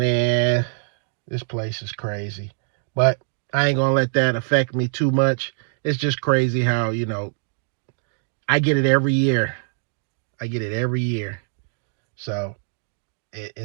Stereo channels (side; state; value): left; silent; digital silence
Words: this place is crazy. But I ain't gonna let that affect me too much. It's just crazy how, I get it every year. I get it every year. So